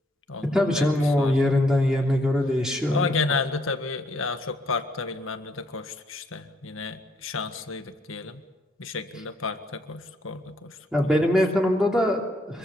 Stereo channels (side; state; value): both; normal; correlation 0.71